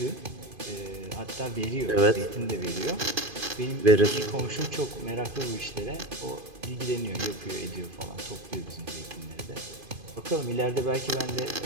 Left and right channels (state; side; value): late; left; 2.5 ms